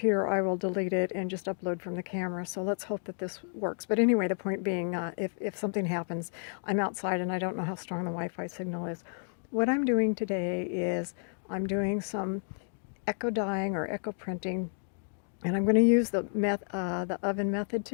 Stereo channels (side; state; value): right; silent; 57 dB below the other